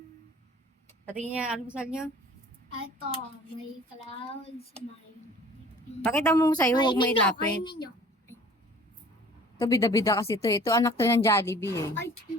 Patingin niya, almusal niyo. Ito, may clouds, may... Pakita mo sa'yo, huwag may Kainin nyo, lapit. kainin nyo. Ito, bida-bida kasi ito. Ito, anak to ng Jollibee eh. Ay,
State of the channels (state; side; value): normal; both; correlation 0.48